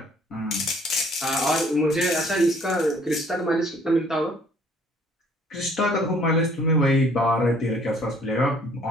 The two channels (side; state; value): both; normal; correlation 0.59